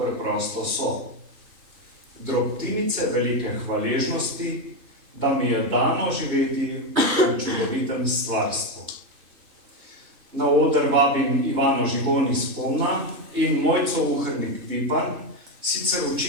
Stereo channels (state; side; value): late; left; 3.1 ms